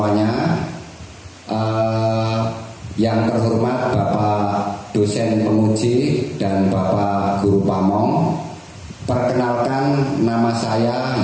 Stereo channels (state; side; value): identical; both; correlation 1.00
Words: Yang terhormat Bapak dosen penguji dan Bapak guru pamong, perkenalkan nama saya